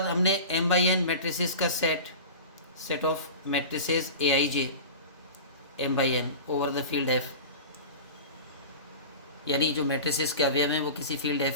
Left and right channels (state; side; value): inverted; both; correlation -0.33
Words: हमने m/n मैट्रिसेस का set of matrices Aij m/n over the field F, यानी जो मैट्रिसेस के अवयव हैं वो किसी फील्ड